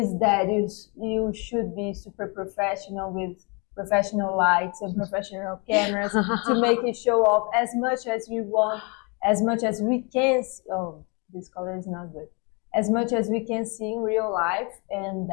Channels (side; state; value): right; quieter; 32.1 dB